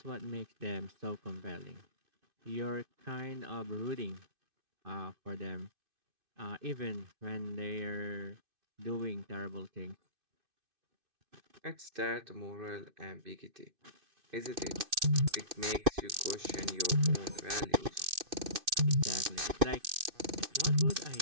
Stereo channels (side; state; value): left; late; 2.6 ms